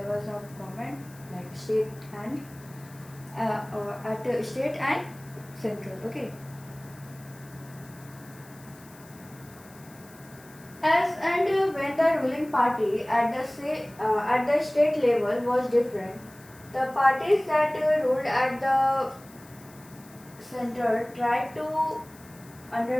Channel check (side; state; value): left; noise; hiss, 23 dB below the sound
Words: of government, like state and at state and central. Okay. As and when the ruling party at the state level was different, the parties that ruled at the center tried to